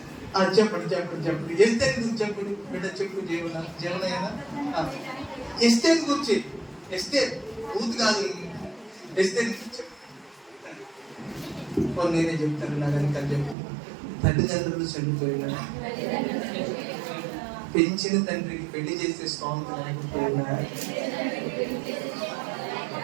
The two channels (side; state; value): left; drops out; at 13.6 s